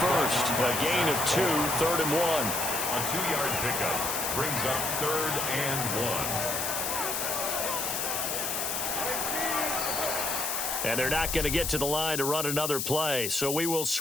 first. A gain of 2, 3rd and 1. A 2-yard pickup brings up 3rd and 1. And they're not going to get to the line to run another play. So we will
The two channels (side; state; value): left; noise; hiss, 1 dB below the sound